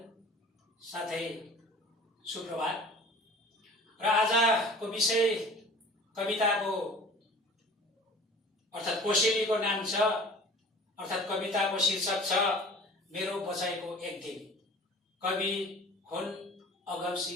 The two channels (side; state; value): both; normal; correlation 0.45